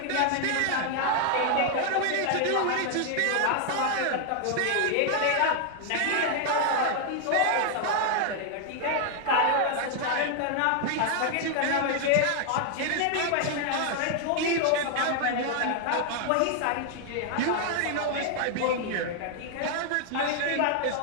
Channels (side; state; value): both; different; correlation 0.00